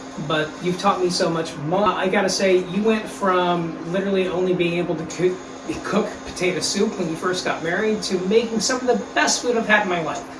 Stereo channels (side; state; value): both; identical; correlation 1.00